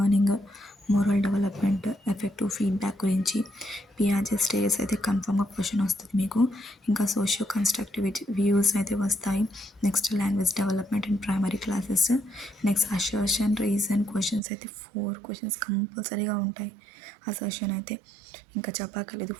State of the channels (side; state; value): left; drops out; at 14.4 s